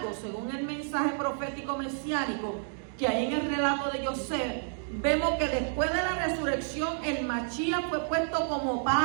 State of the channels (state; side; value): silent; left; 58 dB below the other